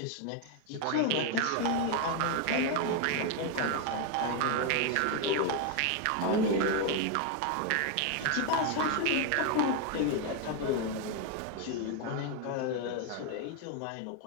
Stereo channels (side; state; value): both; different; correlation 0.01